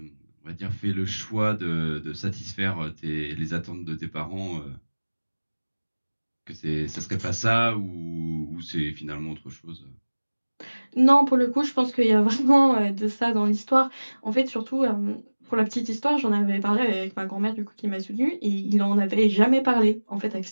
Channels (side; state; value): both; inverted; correlation -1.00